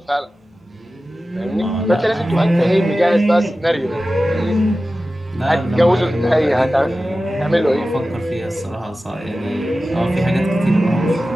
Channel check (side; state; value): both; normal; correlation 0.95